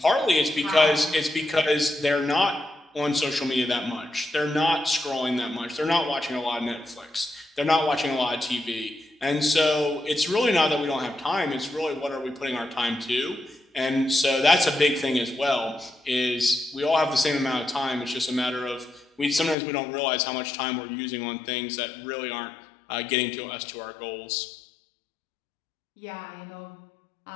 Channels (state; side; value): drops out; right; at 19.6 s